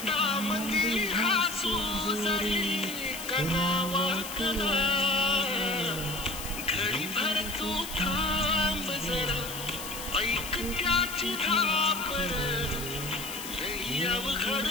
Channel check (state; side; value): noise; left; hiss, 9 dB below the sound